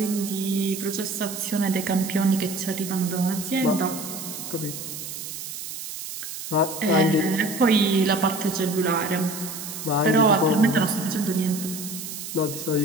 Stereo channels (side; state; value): right; noise; hiss, 9 dB below the sound